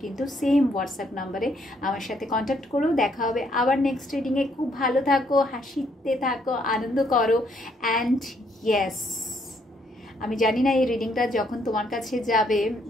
কিন্তু সেম হোয়াটসঅ্যাপ নাম্বারে আমার সাথে কন্ট্যাক্ট করো। দেখা হবে আবার নেক্সট রিডিংয়ে। খুব ভালো থাকো, হাসিতে থাকো, আনন্দ করো, অ্যান্ড ইয়েস, আমি জানি না এই রিডিংটা যখন তোমার কাছে যাবে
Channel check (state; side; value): normal; both; correlation 0.70